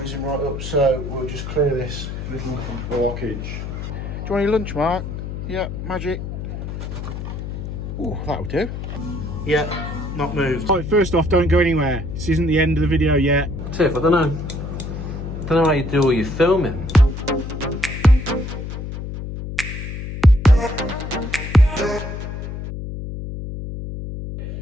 right up, so we'll just clear this little blockage. Do you want any lunch, Mark? Yeah, magic. Oh, that'll do. Yeah, not moved. Right, first off, don't go anywhere. This isn't the end of the video yet. Tiff, I don't know how you do all your filming.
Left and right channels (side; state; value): left; noise; hum, 7 dB below the sound